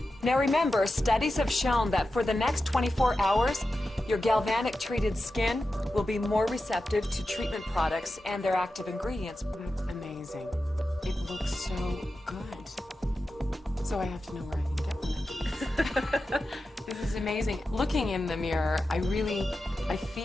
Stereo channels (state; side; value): normal; both; correlation 0.92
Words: Now remember, studies have shown that for the next 24 hours, your galvanic treated skin will be more receptive to treatment products and their active ingredients. That's amazing. It looks so good. So I have to know where I can get one of these. This is amazing. Looking in the mirror, I can